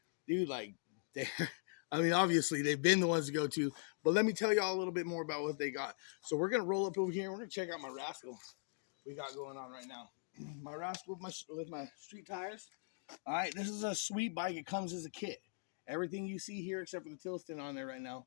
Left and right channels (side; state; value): right; silent; digital silence